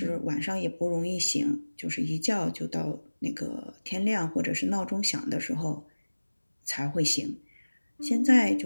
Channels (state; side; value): inverted; both; correlation -1.00